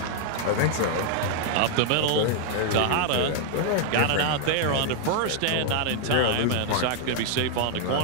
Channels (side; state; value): both; different; correlation 0.00